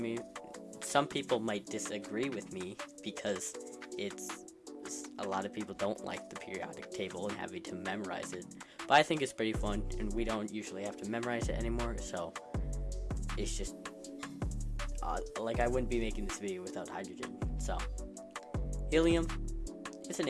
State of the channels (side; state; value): both; identical; correlation 1.00